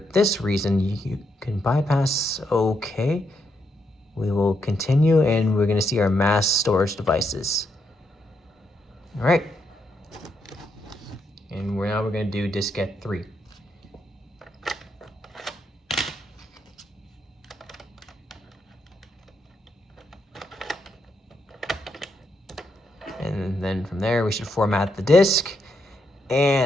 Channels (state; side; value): normal; both; correlation 0.79